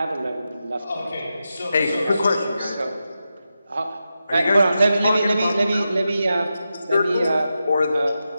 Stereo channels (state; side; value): inverted; both; correlation -0.89